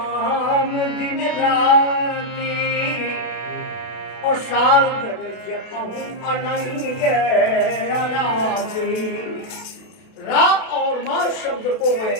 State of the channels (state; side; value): late; right; 32 ms